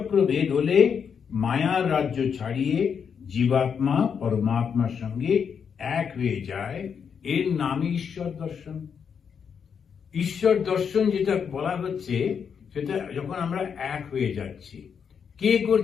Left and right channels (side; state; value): right; quieter; 6.9 dB